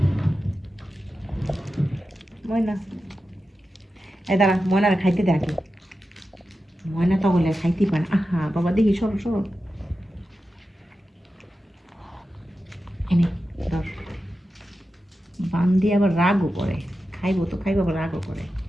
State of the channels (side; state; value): both; normal; correlation 0.92